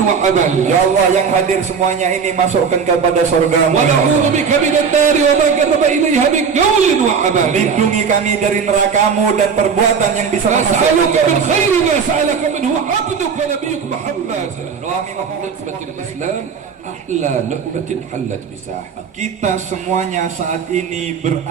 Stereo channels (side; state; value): left; quieter; 6.2 dB